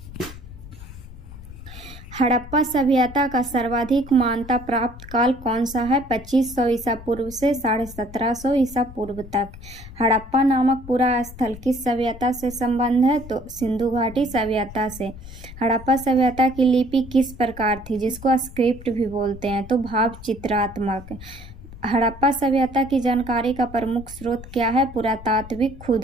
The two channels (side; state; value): left; noise; rumble, 15 dB below the sound